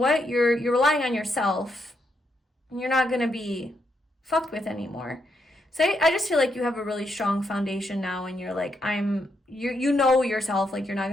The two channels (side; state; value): both; normal; correlation 0.79